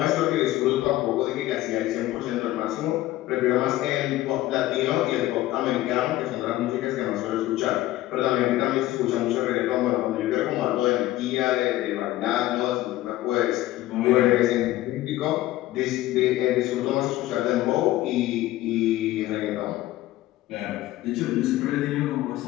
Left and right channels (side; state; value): right; quieter; 15.8 dB